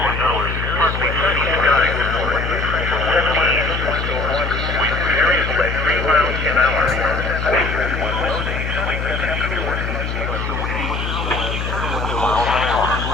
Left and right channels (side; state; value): left; noise; hum, 3 dB below the sound